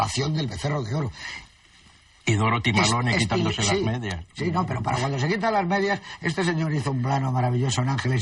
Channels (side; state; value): both; identical; correlation 1.00